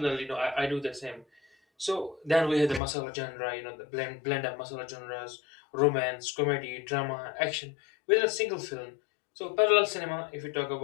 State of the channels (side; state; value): right; drops out; at 2.8 s